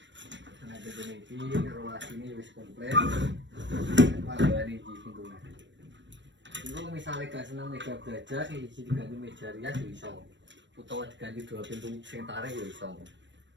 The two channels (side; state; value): left; late; 0.53 ms